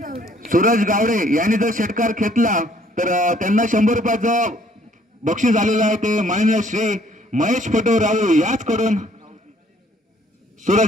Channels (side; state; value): both; normal; correlation 0.62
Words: सूरज गावडे यांनी जर षटकार घेतला तर त्यांना 100 रुपयाचं बक्षीस आलेलं आहे. ते माननीय श्री महेश पटूराव याचकडून